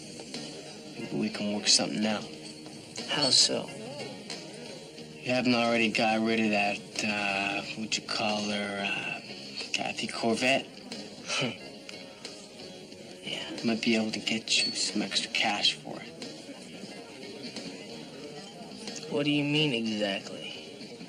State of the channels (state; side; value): identical; both; correlation 1.00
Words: Maybe we can work something out. How so? You haven't already got rid of that, what'd you call her, Kathy Corvette? Yeah, might be able to get you some extra cash for it. What do you mean exactly?